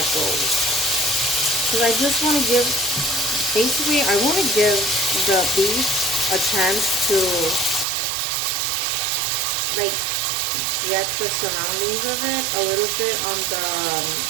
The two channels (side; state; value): left; drops out; at 7.9 s